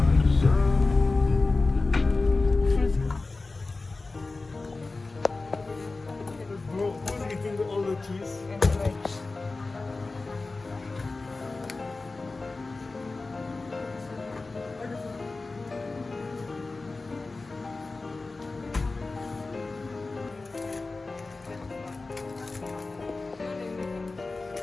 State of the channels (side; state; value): right; quieter; 3.5 dB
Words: Bro, who's eating all the cheese? And veg.